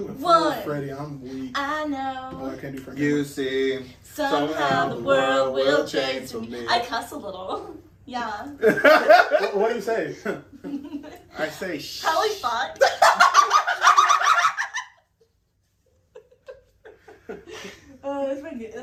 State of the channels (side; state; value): both; identical; correlation 1.00